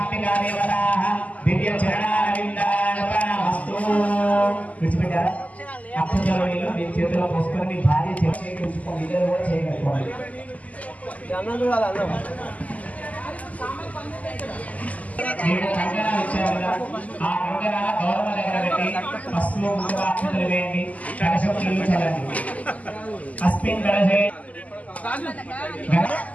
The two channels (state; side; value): late; right; 0.073 ms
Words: దేవతాః దివ్య చరణారవిందార్పణమస్తు. విడిచిపెట్టారా? అక్షతలో నీళ్లు మీ చేతిలో పోసుకొని మీ భార్య చేయించుకోండి, ఇద్దరు కూడా చేయగలుగుకోండి. మీరు కంకణాలు ఇచ్చారు కదా, ఆ కంకణాల గౌరవ దగ్గర పెట్టి పసుపు ముందుగా అక్షతలు వేయండి, కలశం నీళ్ళు చల్లండి. అస్మిన్ కలశే